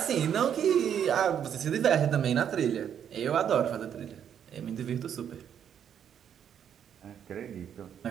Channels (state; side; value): quieter; left; 8.8 dB